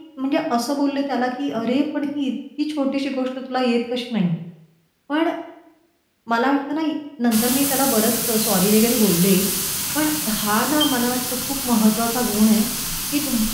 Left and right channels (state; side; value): identical; both; correlation 1.00